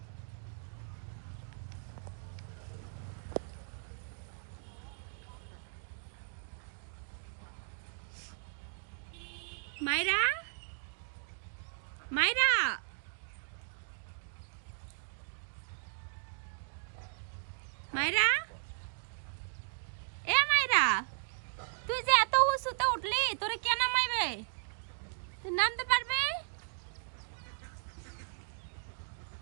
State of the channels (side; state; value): left; silent; digital silence